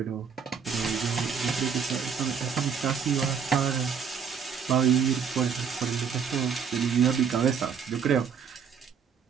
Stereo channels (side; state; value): left; quieter; 6.8 dB